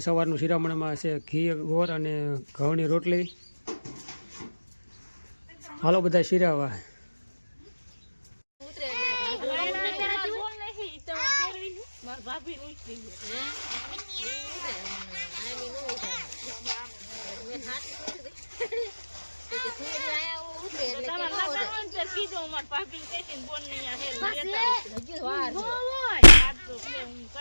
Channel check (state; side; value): inverted; both; correlation -1.00